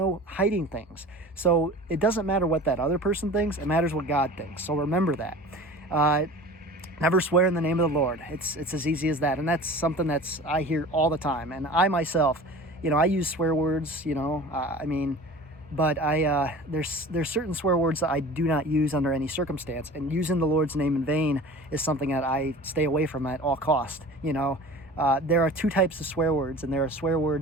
hiding things. So it doesn't matter what that other person thinks. It matters what God thinks. So remember that. Never swear in the name of the Lord. It's as easy as that. And that's something I hear all the time. And I myself, I use swear words, but there's certain swear words that I do not use under any circumstance, and using the Lord's name in vain is something that I stay away from at all cost. There are two types of swear words, and there are swear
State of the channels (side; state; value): both; normal; correlation 0.40